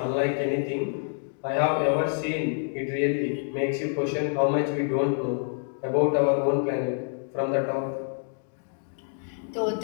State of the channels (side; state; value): right; silent; digital silence